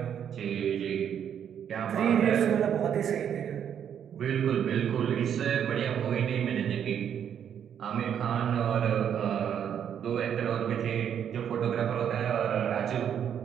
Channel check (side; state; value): left; quieter; 8.8 dB